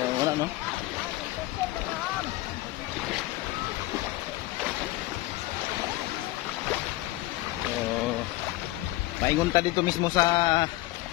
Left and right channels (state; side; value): quieter; right; 18.2 dB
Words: Wala no. Paingon ta dito mismo sa